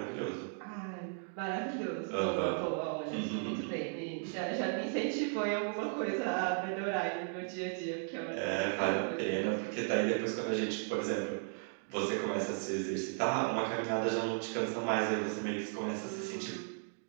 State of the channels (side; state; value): left; silent; 54 dB below the other